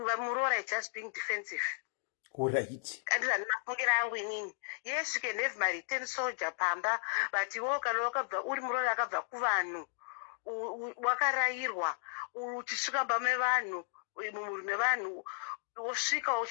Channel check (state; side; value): silent; right; 55 dB below the other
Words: is just being defensive. Right. Yes, you can have my return soldier pamba, but you walk uri Muroora akabva kuvanhu wakarairwa uchisvika pame vanhu mumurume vanhu wosvika